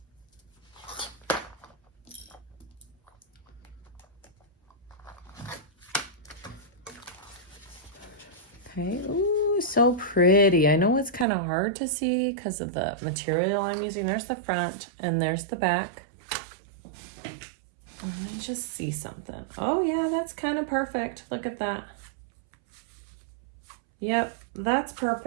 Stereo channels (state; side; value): drops out; left; at 11.2 s